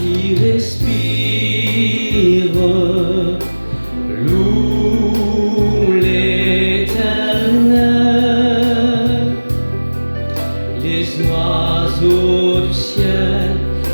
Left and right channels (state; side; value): inverted; both; correlation -1.00